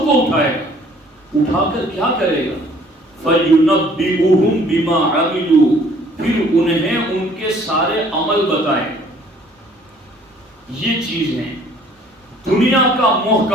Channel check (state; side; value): normal; both; correlation 0.57